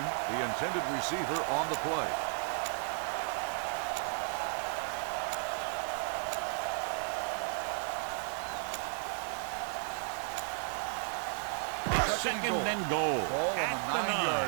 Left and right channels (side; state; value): left; silent; 55 dB below the other